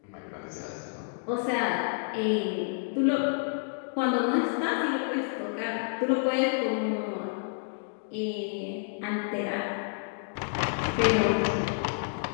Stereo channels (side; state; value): right; silent; digital silence